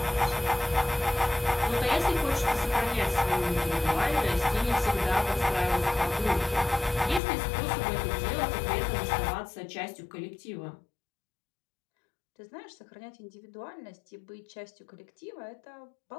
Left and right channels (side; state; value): right; drops out; at 7.2 s